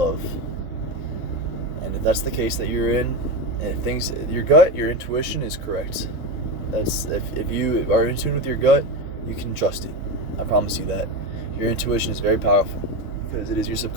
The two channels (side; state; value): right; late; 3.6 ms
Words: And if that's the case that you're in, and your intuition is correct. If you are in tune with your gut you can trust it. I promise you that. Your intuition is very powerful because it is your